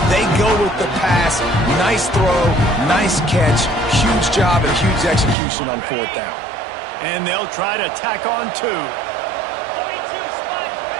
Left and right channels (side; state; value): left; drops out; at 5.4 s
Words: They go with the pass. Nice throw, nice catch. Huge job and huge execution on 4th down. And they'll try to tack on 2.